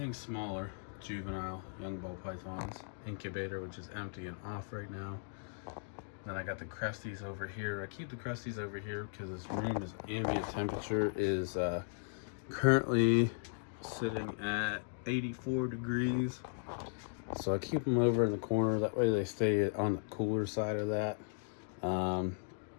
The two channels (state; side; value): silent; right; digital silence